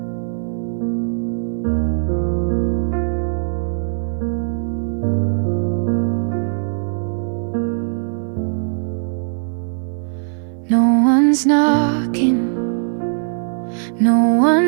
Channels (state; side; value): silent; left; 58 dB below the other